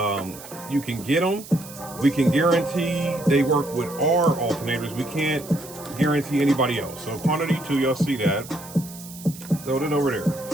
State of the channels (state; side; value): noise; right; hiss, 16 dB below the sound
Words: You can get them. We can guarantee they work with our alternators. We can't guarantee anybody else. So quantity 2, y'all see that. Throw it over there.